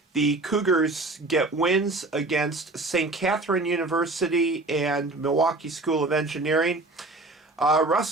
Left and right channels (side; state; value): left; quieter; 3.0 dB